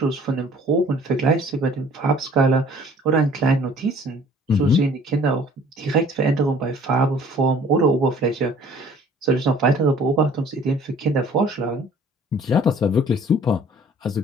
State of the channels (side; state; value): both; normal; correlation 0.53